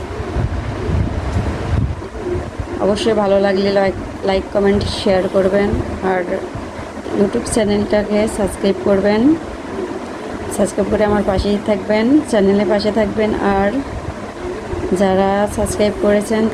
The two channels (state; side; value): identical; both; correlation 1.00